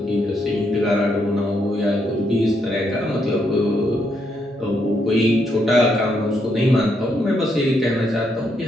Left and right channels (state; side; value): normal; both; correlation 0.77